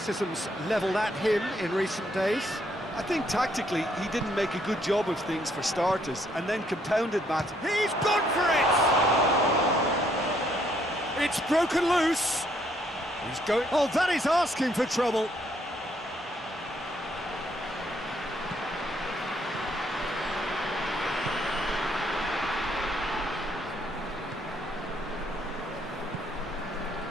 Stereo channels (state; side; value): normal; both; correlation 0.70